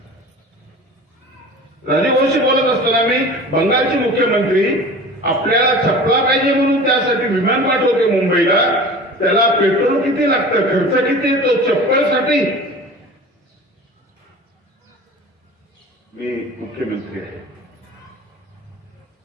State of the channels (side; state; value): both; normal; correlation 0.38